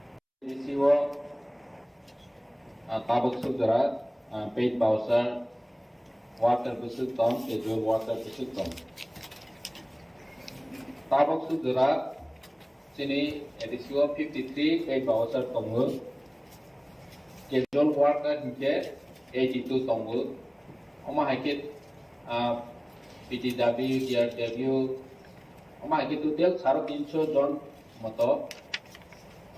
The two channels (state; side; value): identical; both; correlation 1.00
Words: Tabak Sudra, paid Bowser, water Busuk Tom, casual water Busuk Tom. Tabak Sudra, Sini, A.D.C 53, paid Bowser Tongu, casual water Hike, 82 Tongu, Oma Hikit, PTW, DRW, Oma Hikit to tell Saro Pincho John Moto,